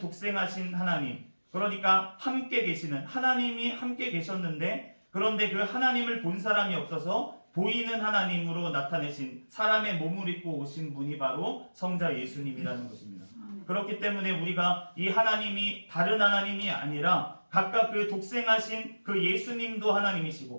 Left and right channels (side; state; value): both; inverted; correlation -1.00